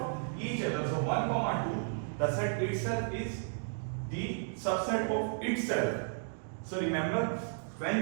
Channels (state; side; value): silent; left; digital silence